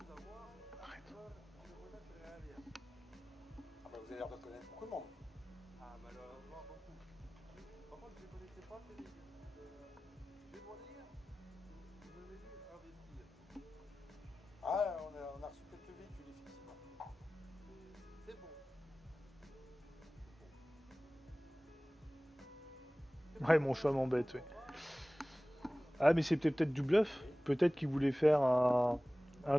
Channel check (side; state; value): both; normal; correlation 0.98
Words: avoir, je ne connais très bien. Ah bah, vous avez l'air de connaître beaucoup de monde. Ah, malheureusement, beaucoup. Par contre, je ne connaissais pas ces débuts. Je vais vous dire, vous avez dû investir. Ah, on a reçu quelques véhicules, effectivement. C'est bon. Ouais, mon chat m'embête, ouais. Ah, mais c'était peut-être du bluff. Peut-être qu'il voulait faire un